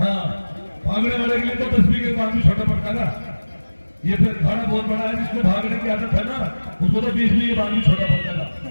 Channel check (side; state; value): both; inverted; correlation -1.00